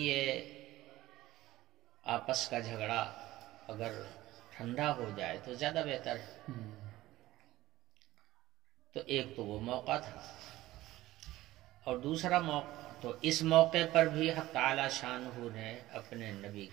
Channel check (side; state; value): left; quieter; 16.5 dB